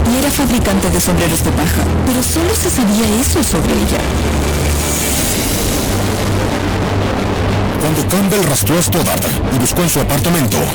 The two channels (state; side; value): identical; both; correlation 1.00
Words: y era fabricante de sombreros de paja, pero solo se sabía eso sobre ella. Cuando Campbell rastreó a Stoddard y buscó en su apartamento,